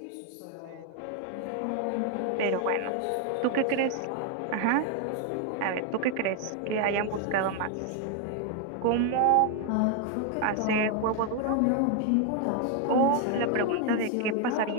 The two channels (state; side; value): different; both; correlation 0.01